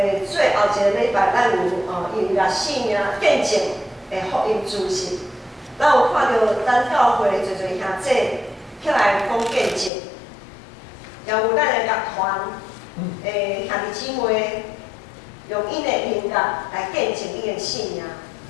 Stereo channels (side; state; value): right; drops out; at 9.9 s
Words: 最后一个礼拜，咱有音乐性命见证的福音主席，咱有看到咱教会侪侪兄姐起来讲见证，也有咱的乐团兄弟姊妹用因的音乐来见证伊的信仰。